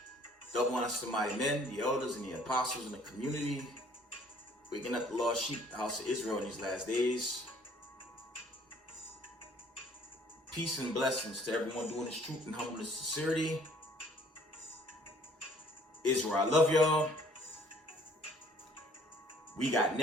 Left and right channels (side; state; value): both; normal; correlation 0.58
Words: Double honors to the mighty men, the elders, and the apostles in the community, waking up the lost sheep, the house of Israel in these last days. Peace and blessings to everyone doing this truth and humbleness and sincerity. Israel, I love y'all. We got